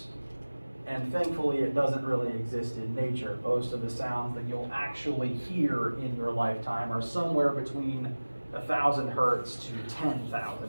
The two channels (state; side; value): inverted; both; correlation -1.00